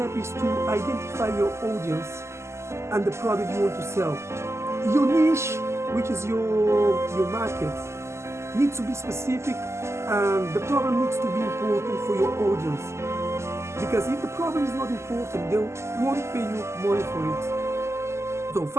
is to identify your audience and the product you want to sell. Your niche, which is your market, needs to be specific, and the problem needs to be important for your audience. Because if the problem is not important, they won't pay you money for it. So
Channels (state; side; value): late; left; 0.13 ms